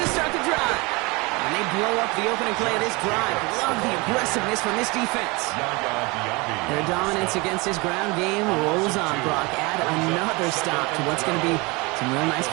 start the drive. And they blow up the opening play of this drive. Love the aggressiveness from this defense. Their dominance against this ground game rolls on. Brock, add another stop to what's going to be some real nice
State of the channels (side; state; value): left; quieter; 25.9 dB